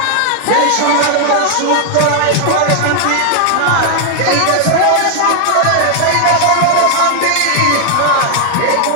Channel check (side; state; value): both; different; correlation 0.00